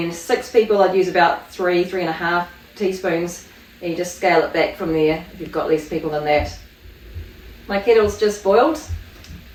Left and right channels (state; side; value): identical; both; correlation 1.00